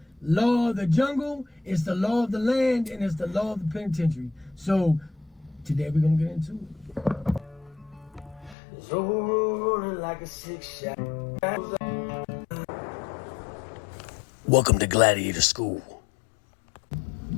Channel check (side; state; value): right; drops out; at 8.6 s